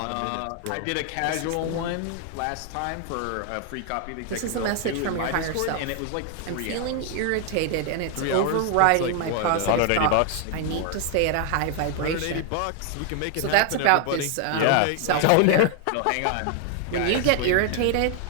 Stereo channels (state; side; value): different; both; correlation 0.00